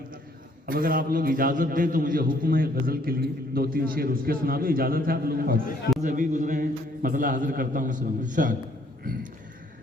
अब अगर आप लोग इजाज़त दें तो मुझे हुक्म है गज़ल के लिए 2-3 शेर उसके सुना दो, इजाज़त है आप लोगों को? अभी गुजरे हैं, मतलब हाजिर करता हूँ सुनो।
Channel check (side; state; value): both; normal; correlation 0.64